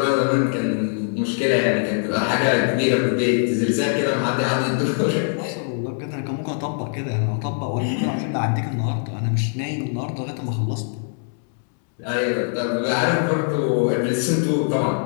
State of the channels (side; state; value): right; silent; 64 dB below the other